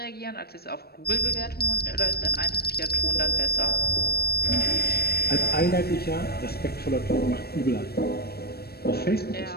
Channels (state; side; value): late; right; 0.46 ms